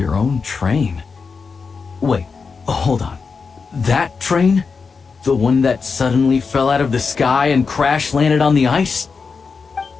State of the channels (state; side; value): quieter; right; 5.1 dB